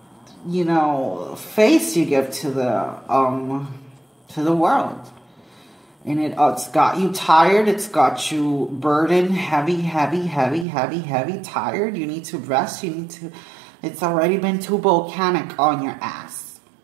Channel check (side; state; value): left; drops out; at 10.7 s